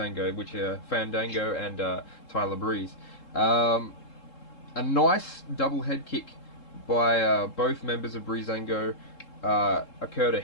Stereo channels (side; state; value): right; late; 3.7 ms